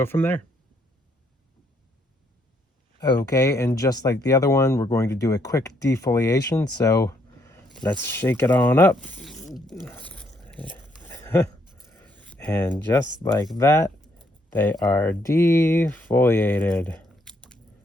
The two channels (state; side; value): normal; both; correlation 0.71